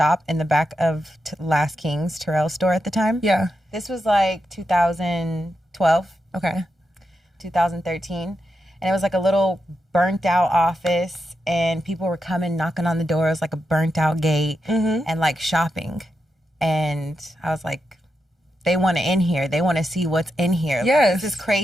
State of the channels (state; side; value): normal; both; correlation 0.86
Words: in the back of Last King's Terrell store at the time. Yeah. This was like 2012, Okay. 2013. And it was like a little burnt out office, and people were coming knocking on the door. It was like a burnt out gate and like shopping. And I was like, they want to in here. They want to see what's in here. Like, Yes. this is